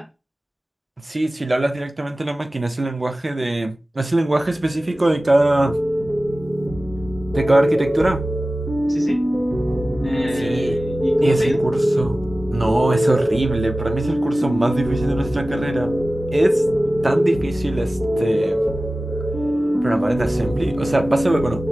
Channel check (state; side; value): normal; both; correlation 0.96